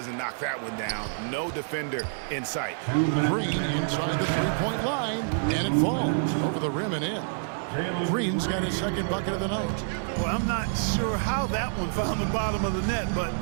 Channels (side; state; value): left; silent; digital silence